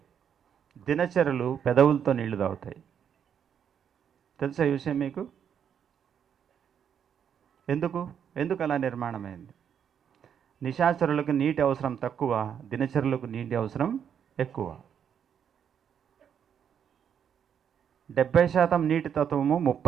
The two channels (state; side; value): quieter; left; 8.2 dB